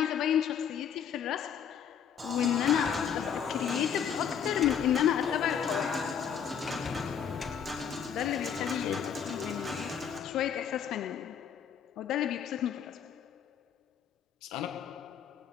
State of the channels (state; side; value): quieter; right; 8.0 dB